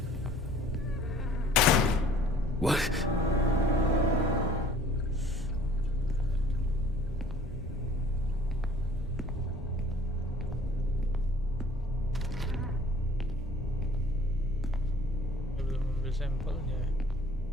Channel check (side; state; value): both; normal; correlation 0.54